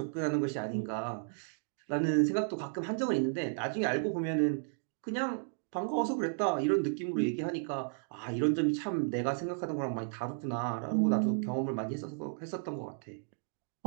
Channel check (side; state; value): left; silent; digital silence